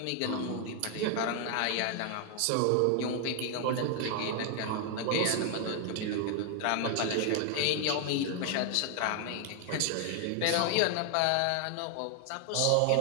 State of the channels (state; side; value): different; both; correlation 0.00